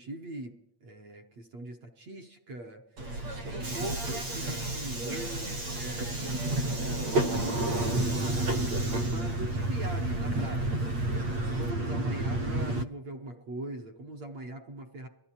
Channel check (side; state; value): left; late; 8.6 ms